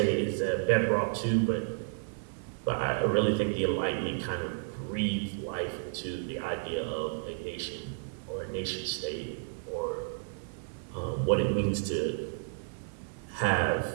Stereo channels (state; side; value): silent; left; 57 dB below the other